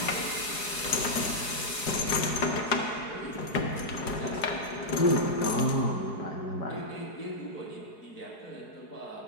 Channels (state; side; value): late; right; 4.8 ms